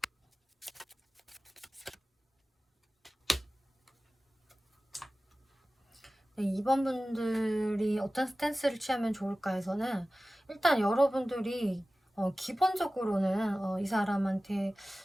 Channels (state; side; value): normal; both; correlation 0.96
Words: 네, 2번 분들이 어떤 스탠스를 취하면 좋을까 해서는 일단 여러분들이 기본적으로는 이 사람한테